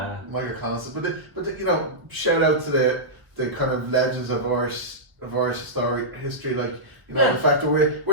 Michael Collins, but you know, shout out to the kind of legends of Irish history, like you know the fact that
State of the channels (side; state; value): left; late; 1.2 ms